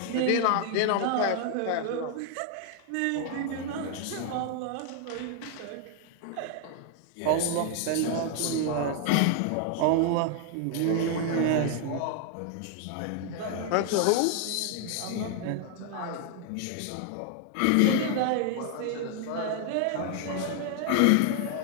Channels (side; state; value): both; different; correlation 0.00